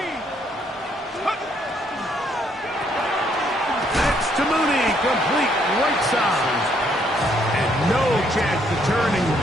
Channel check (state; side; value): normal; both; correlation 0.70